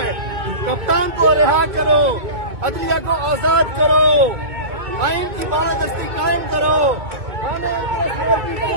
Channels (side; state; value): left; late; 2.2 ms